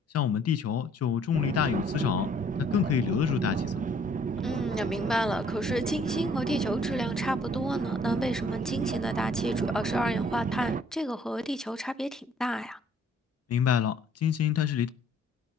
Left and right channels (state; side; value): normal; both; correlation 0.60